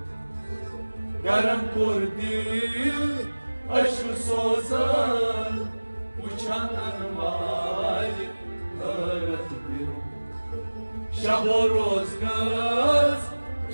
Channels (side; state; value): both; inverted; correlation -1.00